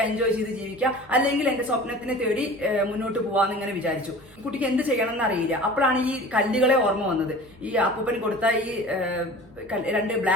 എൻജോയ് ചെയ്ത് ജീവിക്കുക, അല്ലെങ്കിൽ എന്റെ സ്വപ്നത്തിനെ തേടി മുന്നോട്ട് പോവാന്ന് ഇങ്ങനെ വിചാരിച്ചു. കുട്ടിക്ക് എന്ത് ചെയ്യണം എന്ന് അറിയില്ല. അപ്പോഴാണ് ഈ കല്ലുകളെ ഓർമ്മ വന്നത്. ഈ അപ്പൂപ്പൻ കൊടുത്ത ഈ 2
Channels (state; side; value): noise; right; hum, 28 dB below the sound